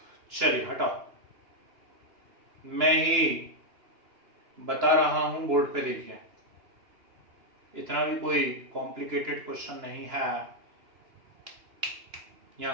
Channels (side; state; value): left; late; 2.9 ms